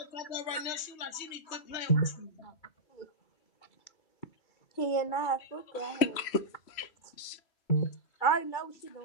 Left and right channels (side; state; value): right; late; 3.0 ms